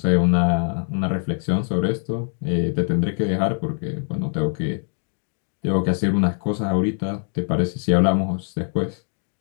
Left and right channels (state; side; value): silent; right; 57 dB below the other